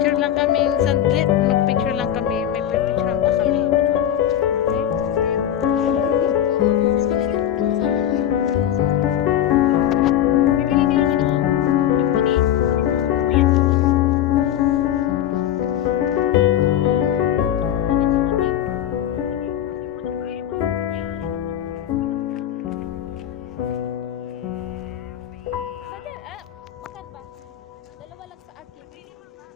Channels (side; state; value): right; quieter; 10.9 dB